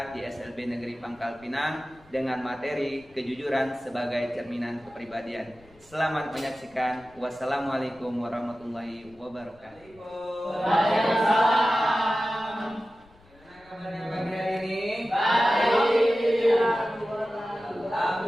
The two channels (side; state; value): left; noise; rumble, 28 dB below the sound